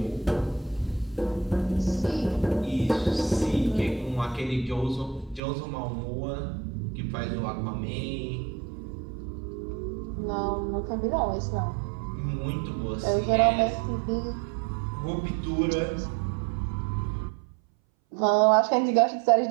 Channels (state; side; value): drops out; left; at 5.4 s